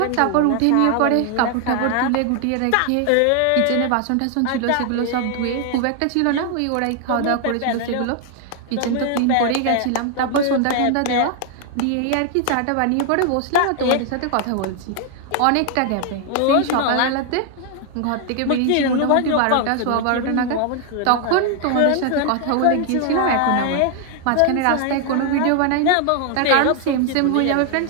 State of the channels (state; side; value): different; both; correlation 0.00